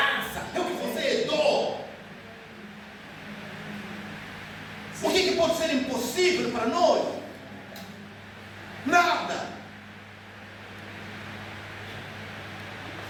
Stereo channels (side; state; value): both; identical; correlation 1.00